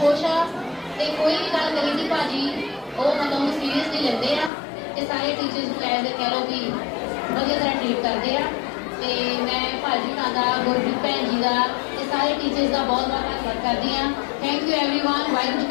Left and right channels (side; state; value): right; drops out; at 4.5 s